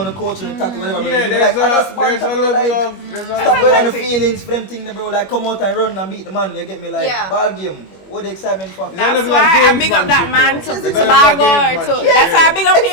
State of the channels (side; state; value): right; late; 21 ms